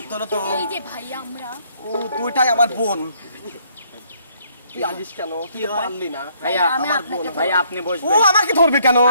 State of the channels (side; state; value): both; inverted; correlation -0.67